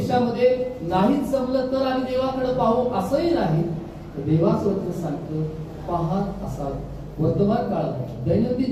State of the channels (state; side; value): identical; both; correlation 1.00